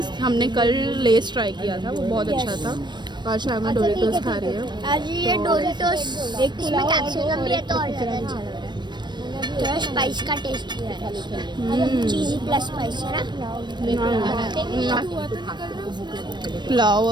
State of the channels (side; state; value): left; late; 0.22 ms